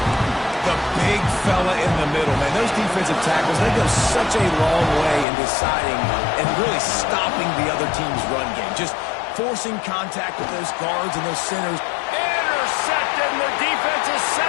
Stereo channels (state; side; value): drops out; right; at 5.2 s